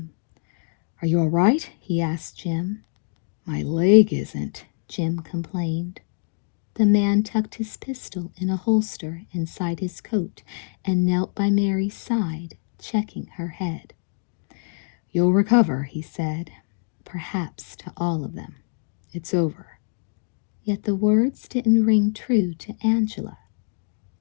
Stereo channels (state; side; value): silent; right; 62 dB below the other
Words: "Are you all right?" he asked Jim. "My leg isn't," Jim complained. The man tucked his pistol in a holster inside his coat and knelt by Mary's side, checking her head. "You'll recover," he said. "Perhaps to all of them. It's over." Yet the words didn't ring true to Angela.